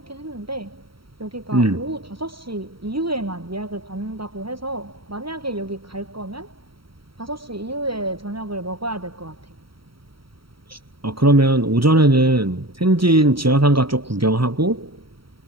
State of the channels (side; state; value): left; late; 0.75 ms